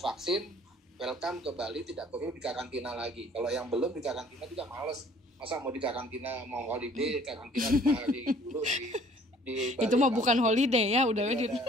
welcome ke Bali, tidak perlu dikarantina lagi. Kalau yang belum dikarantina juga males. Masa mau dikarantina, mau holiday, karantina 5 hari dulu di Bali. Itu mah bukan holiday ya, udah ada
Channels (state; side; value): normal; both; correlation 0.56